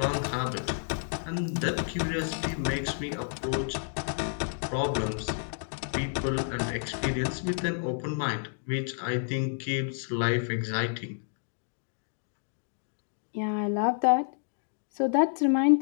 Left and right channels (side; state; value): right; silent; digital silence